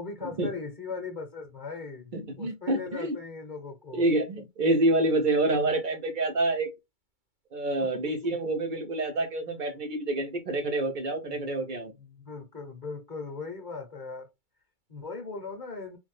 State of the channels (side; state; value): left; late; 2.3 ms